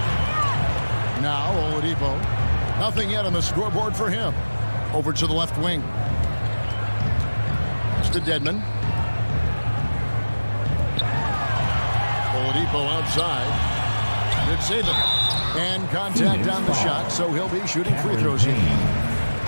Now Oladipo. Nothing yet on the scoreboard for him. Over to the left wing. It's to Dedmon. Oladipo outside. Good save it. And contact on the shot, so he'll be shooting free throws here.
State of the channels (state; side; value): inverted; both; correlation -1.00